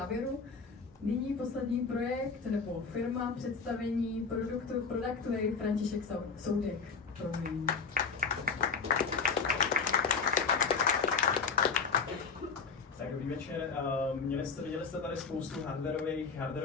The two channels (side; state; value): right; quieter; 5.2 dB